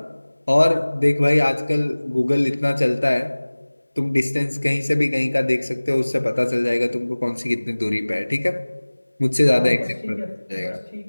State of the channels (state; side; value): inverted; both; correlation -1.00